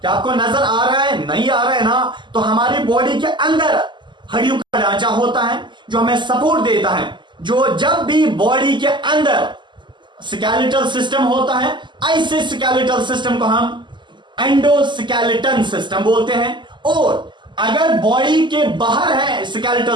क्या आपको नजर आ रहा है? नहीं आ रहा है ना? तो हमारी बॉडी के अंदर हड्डियों का ढांचा होता है जो हमें सपोर्ट देता है। जो जब भी बॉडी के अंदर स्केलेटल सिस्टम होता है, ऐसे स्केलेटल सिस्टम को हम एंडोस्केलेटन सिस्टम बोलते हैं। और अगर बॉडी के बाहर है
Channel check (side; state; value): left; late; 0.22 ms